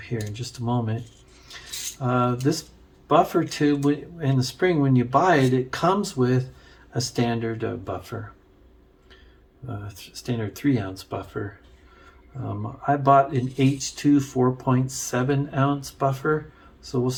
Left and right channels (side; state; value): both; identical; correlation 1.00